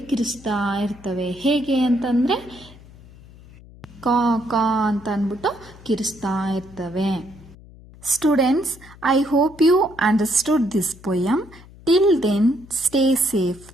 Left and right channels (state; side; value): noise; left; hum, 21 dB below the sound